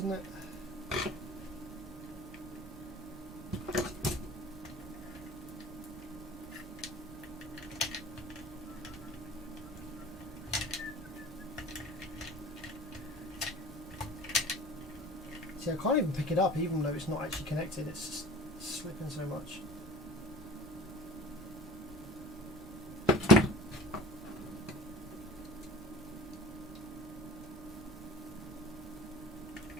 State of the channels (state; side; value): normal; both; correlation 0.43